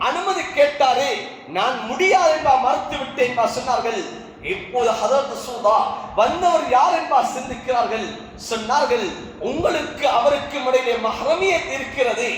அனுமதி கேட்டாரு, நான் முடியாது என்பா மறுத்து விட்டேன் என்பா சொன்னார்கள். இப்போது ஹஜ்ரத் ரசூலுல்லாஹ் வந்தவர் யார் என்பா சிந்திக்கிறார்கள். சொன்னார்கள், உங்களுக்கு அவருக்கும் இடையிலே மஹ்ரமியத் இருக்கிறது,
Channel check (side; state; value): both; identical; correlation 1.00